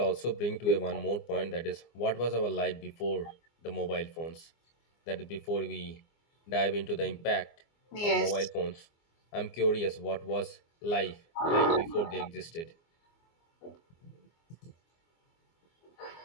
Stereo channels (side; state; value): right; late; 24 ms